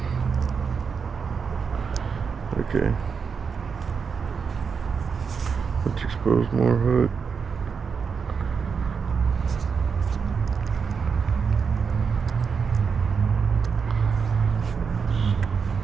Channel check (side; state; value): left; quieter; 5.9 dB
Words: Okay. Let's expose more hook.